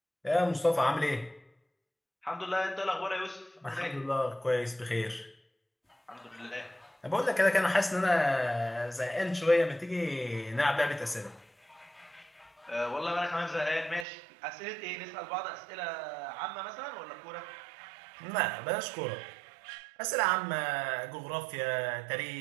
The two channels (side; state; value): left; drops out; at 14.1 s